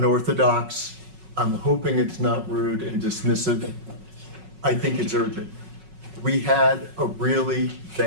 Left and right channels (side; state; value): left; late; 5.4 ms